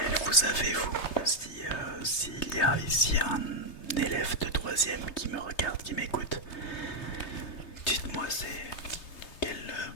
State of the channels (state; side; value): late; right; 3.2 ms